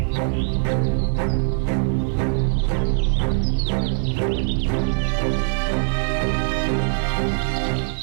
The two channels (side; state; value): left; silent; 64 dB below the other